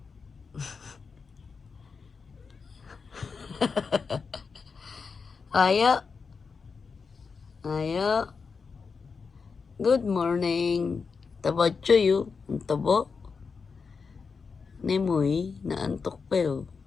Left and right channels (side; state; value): right; quieter; 5.2 dB